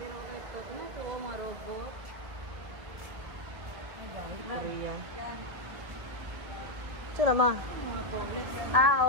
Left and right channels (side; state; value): left; late; 1.5 ms